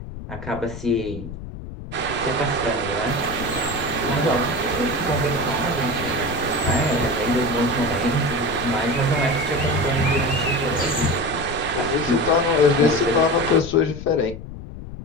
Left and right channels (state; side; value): noise; left; rumble, 11 dB below the sound